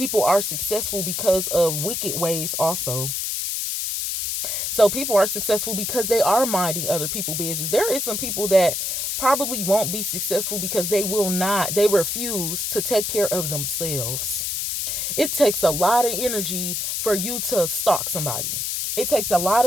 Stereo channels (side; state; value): left; noise; hiss, 1 dB below the sound